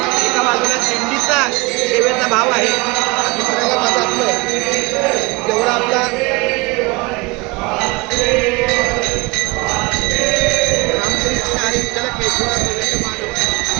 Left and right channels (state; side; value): quieter; left; 25.5 dB